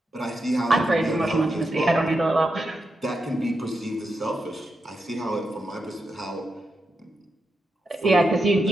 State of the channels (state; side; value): normal; both; correlation 0.86